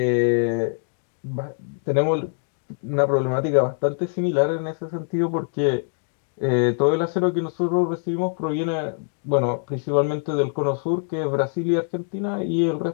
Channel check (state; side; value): silent; right; digital silence